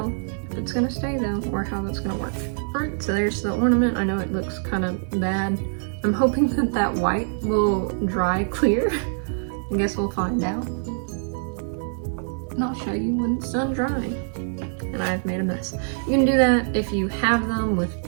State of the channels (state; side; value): silent; left; 56 dB below the other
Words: if it's gonna stay though, or how that's gonna work. Alright, so there's the ornament. I know it looks kind of bad. I'm hoping that that white will dry clear. I guess we'll find out. And I'll show you when it's done drying. And I've made a mess. You can do that if you have them with